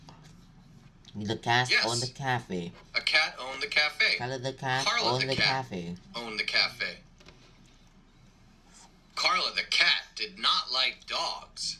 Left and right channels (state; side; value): identical; both; correlation 1.00